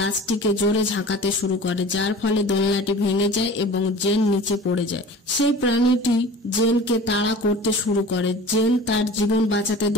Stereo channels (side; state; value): both; normal; correlation 0.40